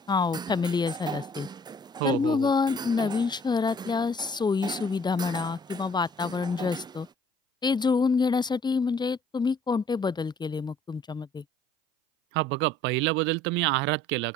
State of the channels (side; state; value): both; normal; correlation 0.58